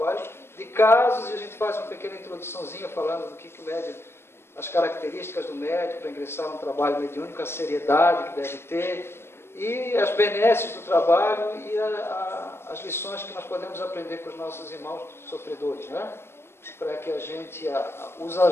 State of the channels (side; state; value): right; late; 0.12 ms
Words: de casos, e a gente faz uma pequena introduçãozinha falando do que o médium, as características do médium para ingressar no trabalho mediúnico, a seriedade que deve ter, e as benesses do trabalho e as lições que nós podemos aprender com os nossos irmãos sofredores, né? Para que a gente os